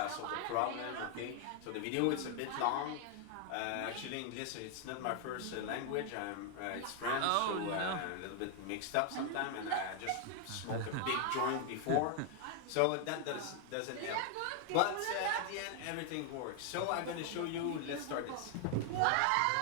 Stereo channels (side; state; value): both; different; correlation 0.00